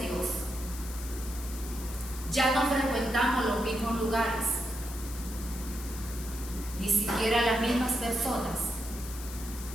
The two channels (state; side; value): noise; left; hiss, 12 dB below the sound